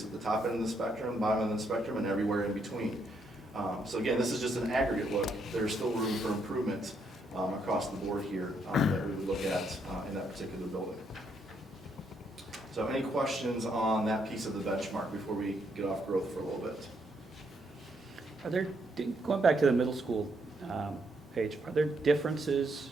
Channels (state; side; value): normal; both; correlation 0.75